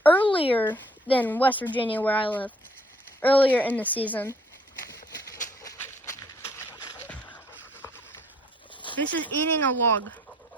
earlier than West Virginia, where I live, earlier in the season. This is eating a log.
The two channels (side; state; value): both; normal; correlation 0.61